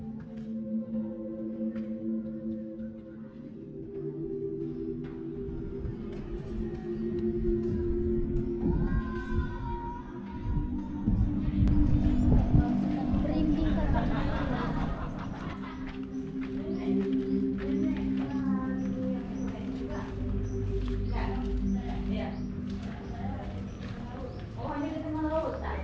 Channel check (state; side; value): identical; both; correlation 1.00